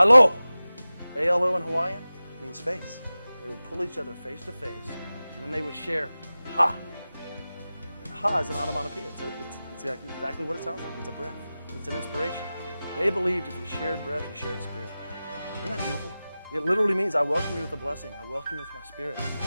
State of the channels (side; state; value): both; inverted; correlation -0.96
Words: A-L-O in Hawaiian means face. They would pull each other face to face, and then they would share ha. And ha is an onomatopoeia. It's exactly what it sounds like. It's a breath. It's an inspiration. They believed if you shared breath, you shared spirit. Isn't that beautiful? It literally means I welcome you with a blessing. I welcome you with my spirit.